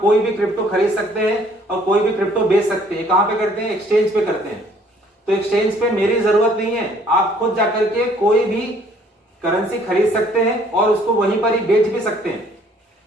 भी क्रिप्टो खरीद सकते हैं और कोई भी क्रिप्टो बेच सकते हैं। कहां पे करते हैं? एक्सचेंज पे करते हैं। तो एक्सचेंज पे मेरी जरूरत नहीं है, आप खुद जाकर के कोई भी करेंसी खरीद सकते हैं और उसको वहीं पर ही बेच भी सकते हैं।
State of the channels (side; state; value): both; normal; correlation 0.60